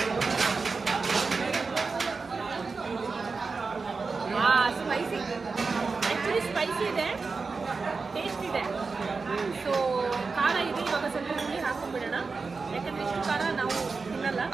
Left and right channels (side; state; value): left; quieter; 4.4 dB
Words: ಸ್ಪೈಸಿ, ಆ್ಯಕ್ಚುಲಿ ಸ್ಪೈಸಿ ಇದೆ, ಟೇಸ್ಟ್ ಇದೆ. ಸೊ ಖಾರ ಇದೆ. ಇವಾಗ ಸ್ವಲ್ಪ ಹುಳಿ ಹಾಕೊಂಡ್ಬಿಡೋಣ, ಯಾಕಂದ್ರೆ ಇಷ್ಟು ಖಾರ ನಾವು ತಿನ್ನಲ್ಲ,